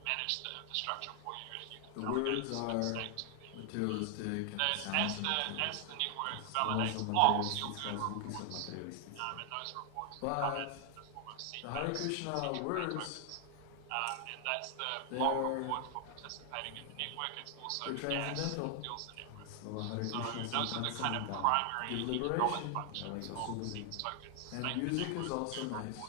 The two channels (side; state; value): both; different; correlation 0.00